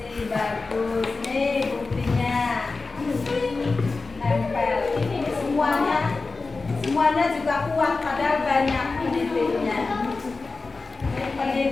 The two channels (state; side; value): quieter; right; 3.9 dB